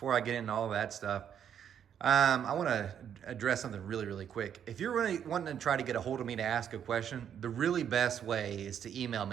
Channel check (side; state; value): left; quieter; 8.8 dB